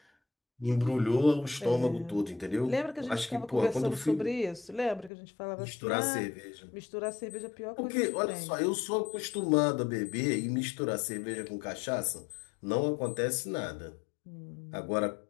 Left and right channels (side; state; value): right; drops out; at 5.1 s